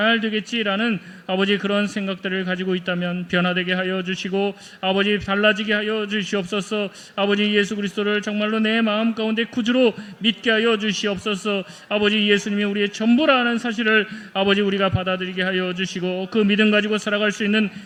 되겠지라는 아버지 그런 생각들을 가지고 있다면 변화되게 하여 주시고 아버지 달라지게 하여 주시옵소서. 아버지 예수 그리스도를 정말로 내 마음 가운데 구주로 믿게 하여 주시옵소서. 아버지 예수님이 우리의 전부라는 사실을 아버지 우리가 받아들이게 하여 주시고 그 믿음 가지고 살아갈 수 있는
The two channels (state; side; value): identical; both; correlation 1.00